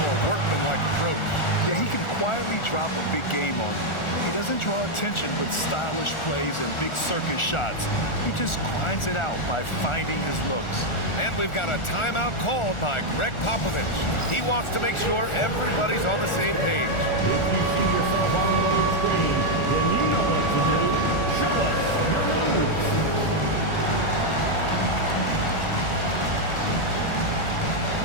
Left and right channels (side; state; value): right; late; 1.4 ms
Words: workmanlike approach. Yeah, he can quietly drop a big game on you. He doesn't draw attention with stylish plays and big circus shots. He just grinds it out by finding his looks. And we've got a timeout called by Greg Popovich. He wants to make sure everybody's on the same page. If you see yourself on the screen, then you know what to do. Show us your moves.